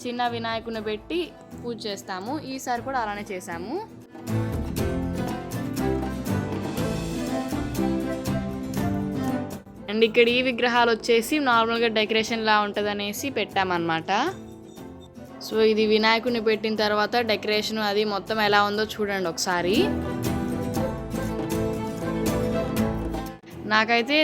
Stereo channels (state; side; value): identical; both; correlation 1.00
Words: చిన్న వినాయకుడిని పెట్టి పూజ చేస్తాము. ఈసారి కూడా అలానే చేసాము. అండ్ ఇక్కడ ఈ విగ్రహాలు వచ్చేసి నార్మల్గా డెకరేషన్ లా ఉంటుంది అనేసి పెట్టామన్నమాట. సో ఇది వినాయకుడిని పెట్టిన తర్వాత డెకరేషన్ అది మొత్తం ఎలా ఉందో చూడండి ఒకసారి. నాకైతే